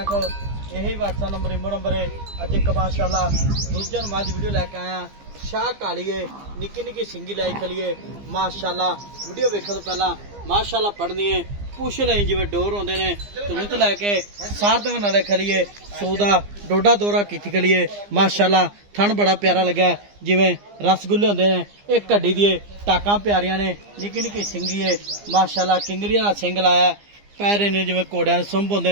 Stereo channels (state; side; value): late; left; 15 ms